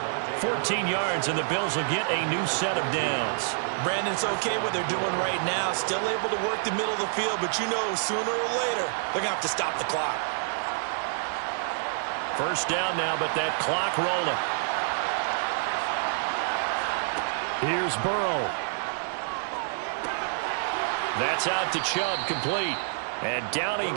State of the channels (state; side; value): silent; left; 55 dB below the other